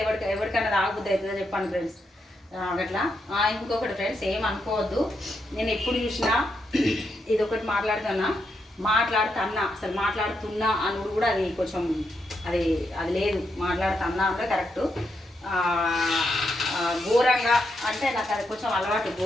ఎవరికైనా తాగబుద్ధి అవుతుందో చెప్పండి ఫ్రెండ్స్. అట్లా ఇంకొకటి ఫ్రెండ్స్, ఏం అనుకోవద్దు. నేను ఎప్పుడు చూసినా ఇది ఒకటి మాట్లాడుతున్నా అసలు మాట్లాడుతున్నా అని కూడా అది కొంచెం అది లేదు. మాట్లాడుతున్నా అంటే కరెక్టు. ఘోరంగా అంటే నాకు అది కొంచెం అలవాటు,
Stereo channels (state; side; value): normal; both; correlation 0.82